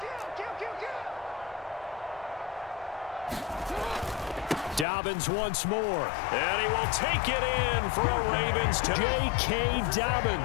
Dobbins once more. And he will take it in for a Ravens touchdown. J.K.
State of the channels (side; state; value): right; drops out; at 4.9 s